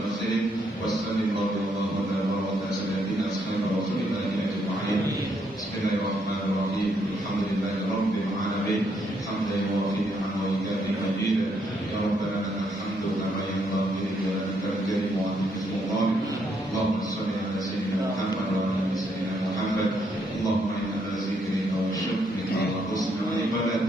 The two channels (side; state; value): both; normal; correlation 0.74